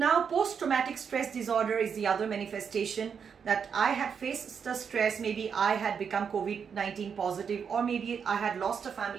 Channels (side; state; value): left; quieter; 6.8 dB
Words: post-traumatic stress disorder is the other manifestation, that I had faced the stress, maybe I had become COVID-19 positive, or maybe I had lost a